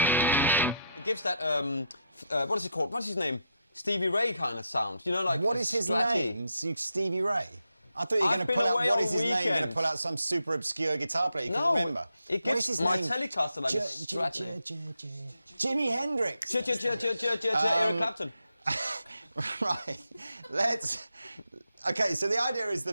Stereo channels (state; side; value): inverted; both; correlation -0.79